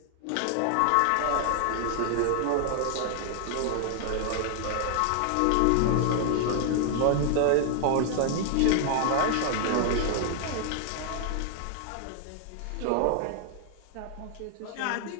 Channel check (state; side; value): different; both; correlation 0.00